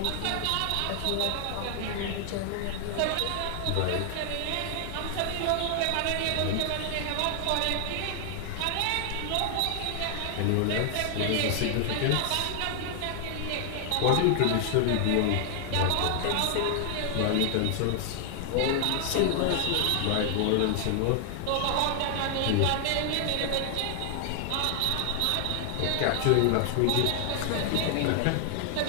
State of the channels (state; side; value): different; both; correlation 0.00